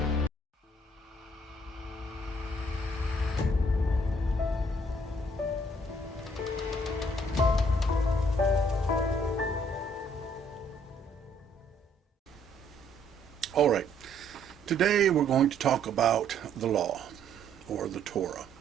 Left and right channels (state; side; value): normal; both; correlation 0.65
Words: All right. Today we're going to talk about the law, or the Torah.